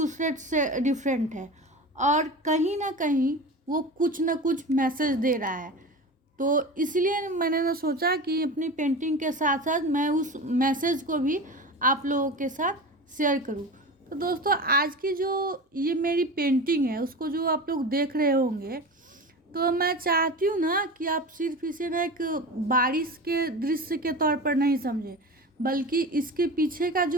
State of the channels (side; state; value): both; normal; correlation 0.30